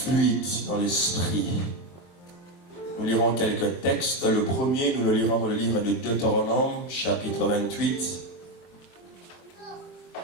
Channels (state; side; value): late; right; 23 ms